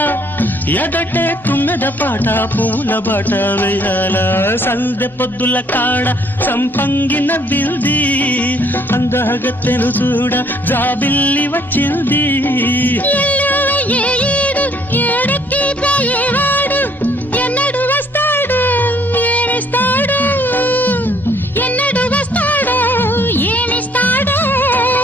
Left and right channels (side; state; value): both; normal; correlation 0.63